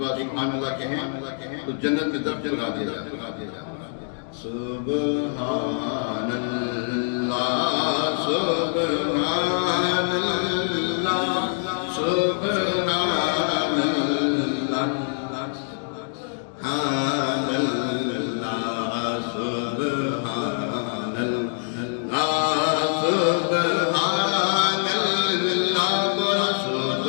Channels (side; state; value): right; silent; digital silence